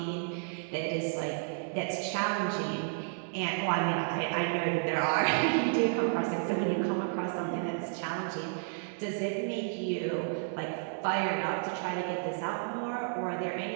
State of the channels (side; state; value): left; silent; digital silence